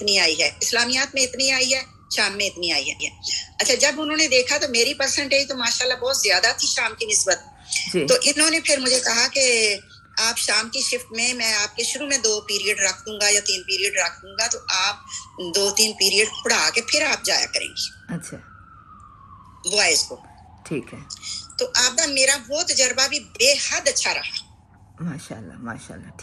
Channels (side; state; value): both; identical; correlation 1.00